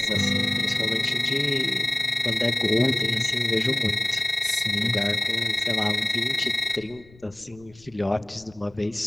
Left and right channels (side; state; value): left; noise; rumble, 25 dB below the sound